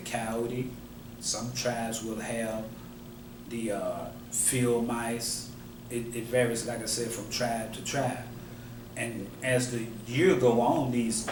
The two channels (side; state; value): both; identical; correlation 1.00